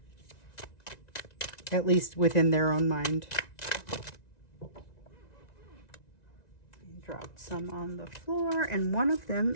at least within their own mind. Dropped some on the floor, and one of them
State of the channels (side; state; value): right; late; 1.9 ms